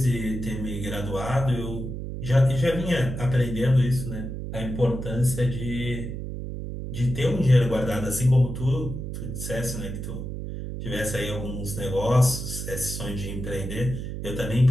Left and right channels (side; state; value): right; noise; hum, 6 dB below the sound